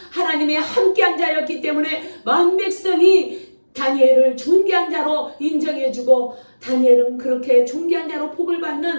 하나님의 함께한 자였기 때문에 만백성이 다니엘을 존귀한 자로 인정해주고 다니엘은 그렇게 존귀한 자로 복을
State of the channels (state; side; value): inverted; both; correlation -1.00